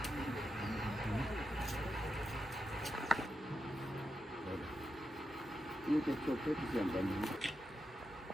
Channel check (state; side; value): normal; both; correlation 0.87